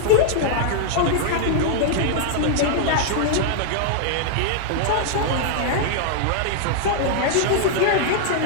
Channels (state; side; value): different; both; correlation -0.01